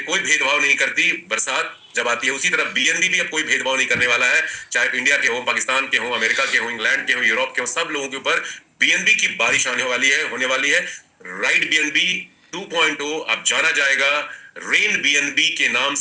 कोई भेदभाव नहीं करती बरसात जब आती है। उसी तरह बीएनबी भी अब कोई भेदभाव नहीं करने वाला है, चाहे इंडिया के हो, पाकिस्तान के हो, अमेरिका के हो, इंग्लैंड के हो, यूरोप के हो, सब लोगों के ऊपर बीएनबी की बारिश आने वाली है, होने वाली है। राइट बीएनबी 2.0 अब जाना जाएगा रेन बीएनबी के नाम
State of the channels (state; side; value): identical; both; correlation 1.00